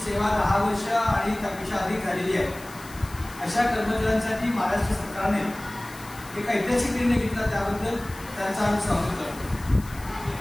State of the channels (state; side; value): noise; left; hiss, 19 dB below the sound